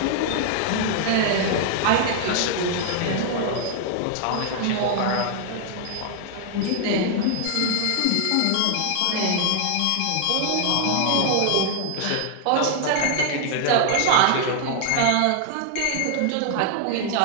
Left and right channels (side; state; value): both; different; correlation 0.00